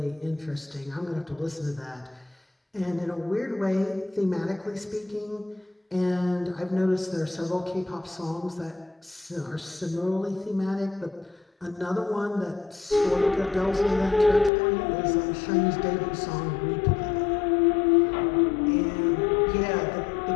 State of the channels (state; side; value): drops out; right; at 14.5 s